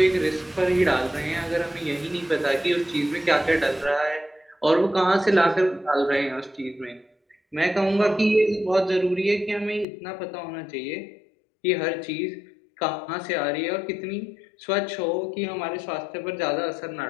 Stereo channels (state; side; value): drops out; right; at 9.9 s